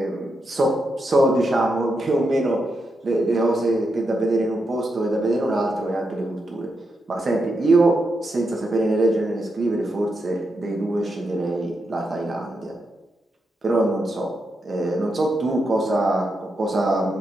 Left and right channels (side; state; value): both; normal; correlation 0.85